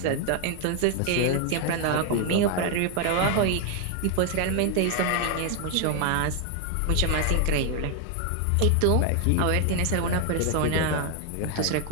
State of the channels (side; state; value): both; different; correlation 0.00